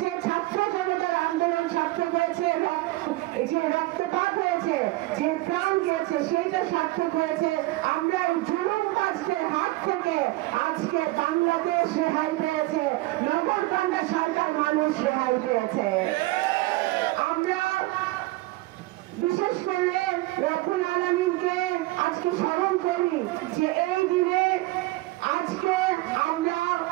ছাত্র জনতার আন্দোলন সার্থক হয়েছে, যে রক্তপাত হয়েছে, যে প্রাণ গিয়েছে সেটা সার্থক হয়েছে। আমরা জুলুমবাজদের হাত থেকে আজকে বাংলাদেশ রেহাই পেয়েছে, নগরকান্দা সরকার মানুষ রেহাই পেয়েছে। আমরা বিশেষ করে রব্বুল আলামিনকে আজকে স্মরণ করি যে এই দিনে আজকে আমরা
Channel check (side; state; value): left; quieter; 19.8 dB